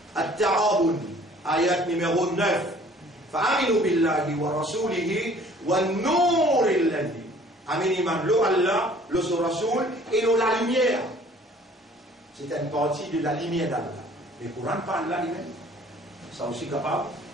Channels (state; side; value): normal; both; correlation 0.54